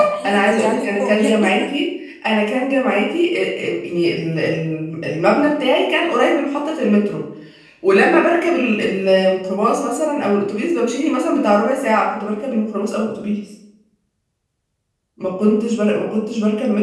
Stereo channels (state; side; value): identical; both; correlation 1.00